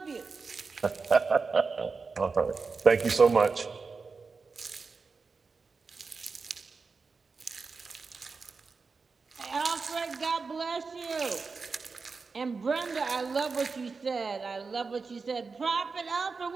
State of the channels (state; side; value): quieter; left; 4.6 dB